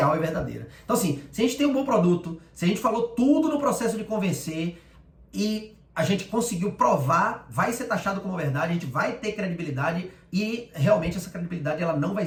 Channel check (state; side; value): identical; both; correlation 1.00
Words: e verdadeira. Então assim, se a gente tem um bom produto, se a gente falou tudo no processo de convencer e a gente conseguiu provar, vai ser taxado como verdade, a gente vai ter credibilidade, e realmente essa credibilidade ela não vai